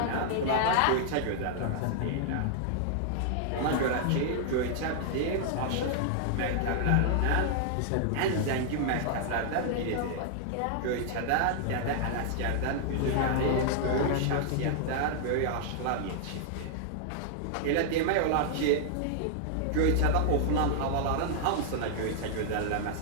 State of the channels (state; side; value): different; both; correlation -0.01